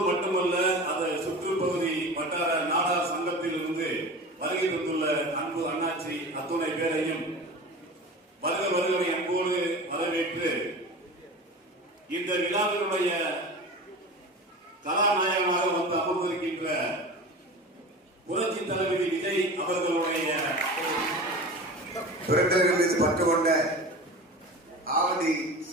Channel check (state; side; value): normal; both; correlation 0.33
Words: மட்டுமல்ல அது சுற்றுப்பகுதி வட்டார நாடார் சங்கத்தில் இருந்து வருகை தந்துள்ள அன்பு அண்ணாச்சி அத்துணை பேரையும் வருகை அன்போடு வரவேற்று இந்த விழாவினுடைய கதாநாயகமாக வந்து அமர்ந்திருக்கின்ற புரட்சி தளபதி விஜய் அவர்களுடைய பிறந்தவர்கள் மீது பற்று கொண்ட ஆவடி